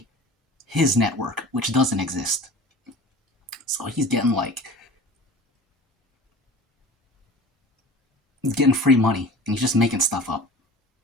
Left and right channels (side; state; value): both; normal; correlation 0.40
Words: his network, which doesn't exist. So he's getting free money, and he's just making stuff up.